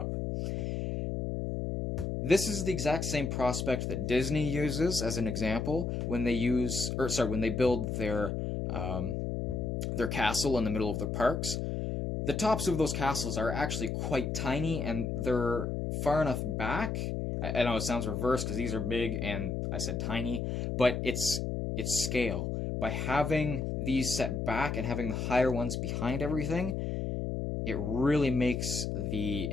This is the exact same prospect that Disney uses as an example when they build their castle in the middle of their parks. The tops of those castles are actually quite tiny, and they're far enough back. I know it sounds reversed because these are big and I said tiny, but it's scale. By having these set back and having the higher ones behind everything, it really makes the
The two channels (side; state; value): left; noise; hum, 2 dB below the sound